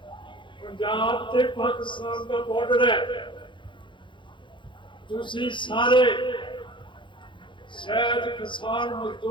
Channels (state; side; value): late; right; 0.23 ms